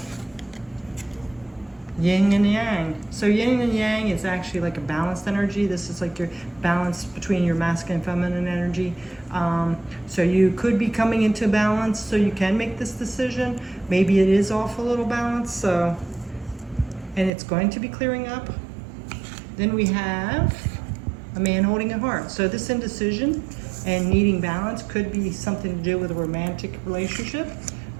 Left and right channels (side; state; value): left; drops out; at 17.3 s